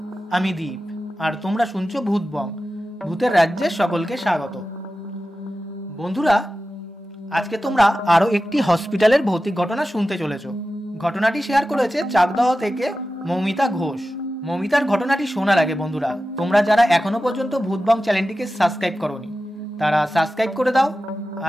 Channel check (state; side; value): normal; both; correlation 0.94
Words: আমি দীপ আর তোমরা শুনছো ভূতবং, ভূতের রাজ্যে সকলকে স্বাগত। বন্ধুরা, আজকে তোমরা আরও একটি হসপিটালের ভৌতিক ঘটনা শুনতে চলেছ। ঘটনাটি শেয়ার করেছে চাকদহ থেকে মৌমিতা ঘোষ। মৌমিতার ঘটনাটি শোনার আগে বন্ধুরা, তোমরা যারা এখনো পর্যন্ত ভূতবং চ্যানেলটিকে সাবস্ক্রাইব করোনি তারা সাবস্ক্রাইব করে দাও